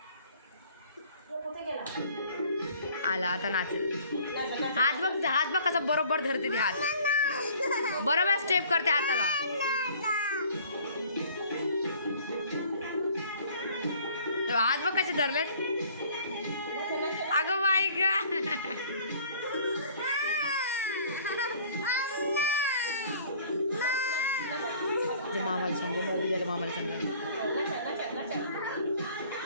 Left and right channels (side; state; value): both; inverted; correlation -0.53